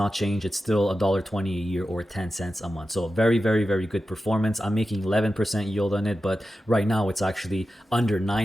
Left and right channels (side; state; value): both; normal; correlation 0.92